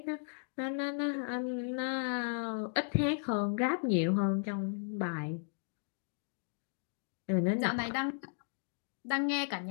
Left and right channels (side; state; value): right; silent; digital silence